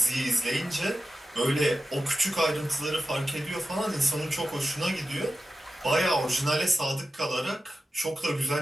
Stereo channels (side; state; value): both; normal; correlation 0.92